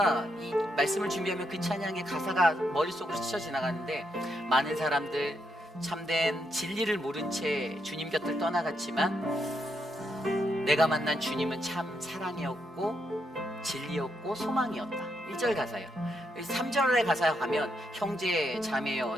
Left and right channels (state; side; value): normal; both; correlation 0.79